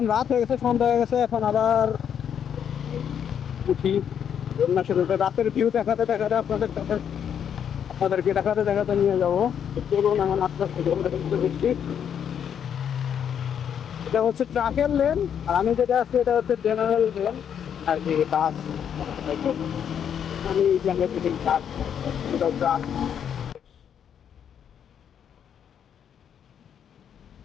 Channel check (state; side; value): quieter; right; 8.5 dB